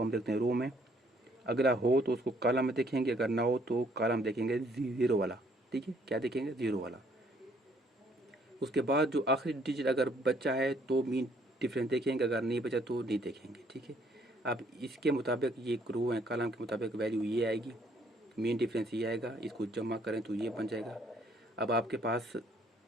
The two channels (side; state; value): both; normal; correlation 0.65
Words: हम देखते हैं रो में, अगला हो तो उसको कॉलम में देखेंगे, अगर ना हो तो कॉलम देखेंगे 0 वाला। ठीक है, क्या देखेंगे, 0 वाला। उसके बाद जो आखिरी डिजिट अगर बचा है तो मीन डिफरेंस देखेंगे, अगर नहीं बचा तो नहीं देखेंगे। ठीक है, अब इसके मुताबिक ये रो है, कॉलम के मुताबिक वैल्यू ये आएगी, मीन डिफरेंस ये आएगा, इसको जमा करें तो ये बन जाएगा। अब आपके पास